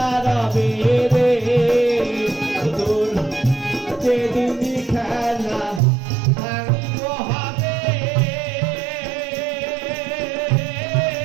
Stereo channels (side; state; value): left; drops out; at 5.8 s